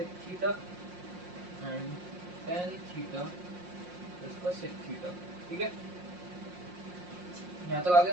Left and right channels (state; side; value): late; left; 5.6 ms